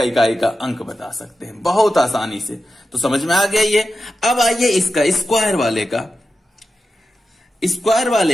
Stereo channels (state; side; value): normal; both; correlation 0.91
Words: इकाई का अंक बता सकते हैं बहुत आसानी से। तो समझ में आ गया ये। अब आइए इसका स्क्वायर वाले का, स्क्वायर